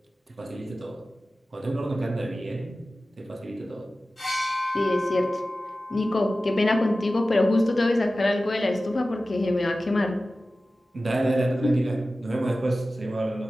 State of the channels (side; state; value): both; normal; correlation 0.95